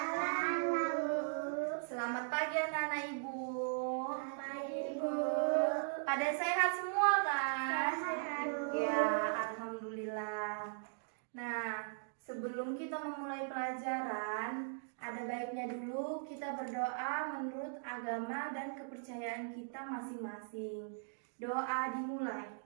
Bu. Selamat pagi anak-anak ibu. Pagi, Bu. Pada sehat semua kan? Sehat, Bu. Ya, alhamdulillah. Nah, sebelum kita memulai pelajaran, ada baiknya dulu kita berdoa menurut agama dan kepercayaan kita masing-masing. Doa dimulai.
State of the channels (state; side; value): silent; left; digital silence